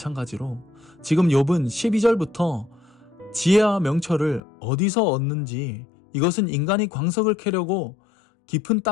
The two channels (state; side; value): drops out; right; at 4.4 s